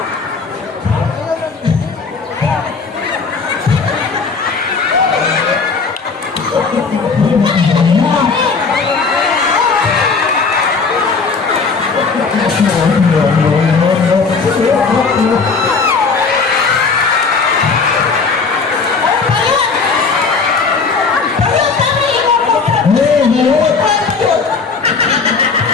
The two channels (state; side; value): quieter; right; 4.7 dB